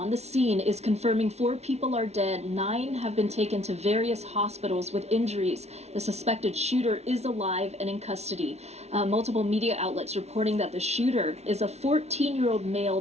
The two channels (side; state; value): left; late; 0.31 ms